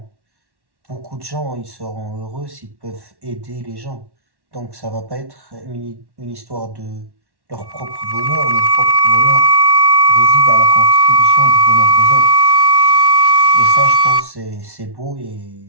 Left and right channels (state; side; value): late; left; 1.1 ms